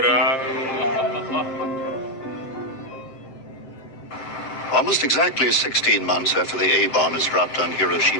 Almost exactly 16 months after the A-bomb is dropped on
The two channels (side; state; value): right; late; 7.9 ms